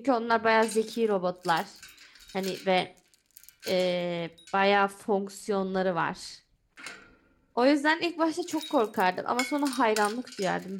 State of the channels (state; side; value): identical; both; correlation 1.00